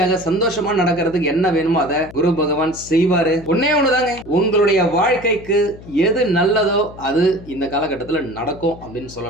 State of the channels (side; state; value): left; noise; hum, 18 dB below the sound